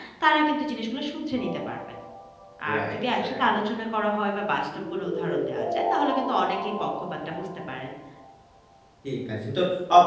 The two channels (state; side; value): identical; both; correlation 1.00